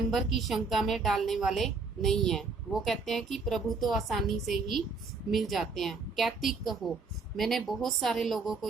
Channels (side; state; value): left; quieter; 4.2 dB